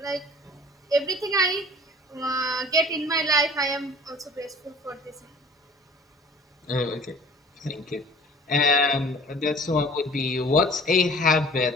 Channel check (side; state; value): both; normal; correlation 0.47